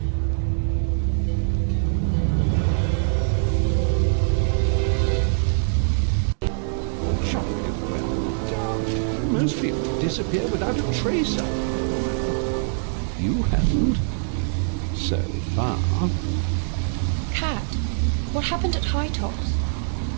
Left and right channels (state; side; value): silent; left; digital silence